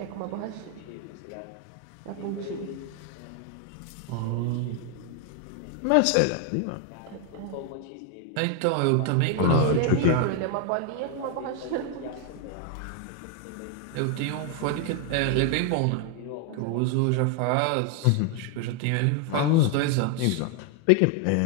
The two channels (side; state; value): both; different; correlation 0.01